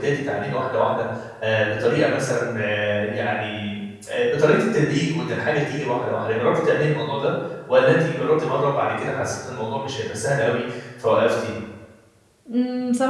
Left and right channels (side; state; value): both; identical; correlation 1.00